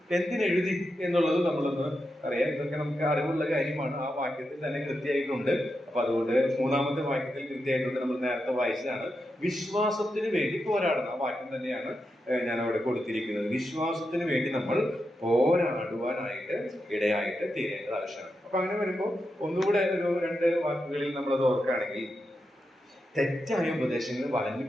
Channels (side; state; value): both; normal; correlation 0.87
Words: എന്തിനെഴുതി എന്നുള്ളത് നമ്മളൊന്ന് അറിയാം. ഇതൊക്കെ നമുക്ക് അറിവുള്ള കാര്യമാണ്. ആ വാക്യത്തിൽ തന്നെ കൃത്യമായിട്ടുണ്ട്. അപ്പൊ അതുകൊണ്ട് മൂന്നാമത്തെ വാക്യത്തിൽ കൃത്യമായിട്ടുണ്ട്. നമ്മൾ നേരത്തെ വായിച്ചതാണ്. വിശ്വാസത്തിന് വേണ്ടി പോരാടണം. ആ വാക്യം തന്നെയാണ് ഞാൻ അവിടെ കൊടുത്തിരിക്കുന്നത്. വിശ്വാസത്തിന് വേണ്ടി നമ്മൾ പോരാടുവാനായിട്ട് ഇടയായിട്ട് തീരേണ്ടത് ആവശ്യമാണ്. അപ്പൊ അങ്ങനെ വരുമ്പോൾ ഒന്നുകൂടെ ഒരു രണ്ട് വാക്കുകളിൽ നമ്മളത് ഓർക്കുകയാണെങ്കിൽ, തെറ്റായ ഉപദേശങ്ങൾ വളഞ്ഞു